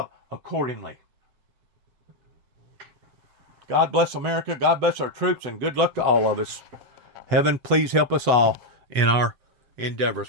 accordingly. God bless America, God bless our troops, and good luck to all of us. Heaven, please help us all in our endeavors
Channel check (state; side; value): late; left; 8.1 ms